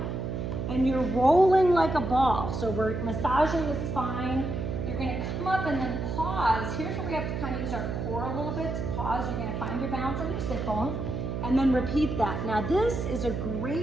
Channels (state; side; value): noise; right; hum, 3 dB below the sound